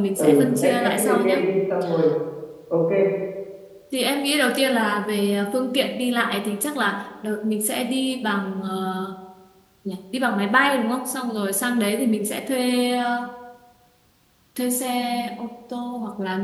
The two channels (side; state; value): both; identical; correlation 1.00